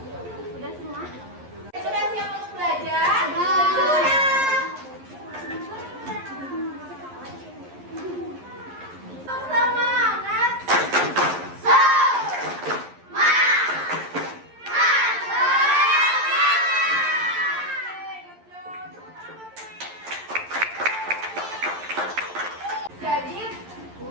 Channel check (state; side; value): late; left; 11 ms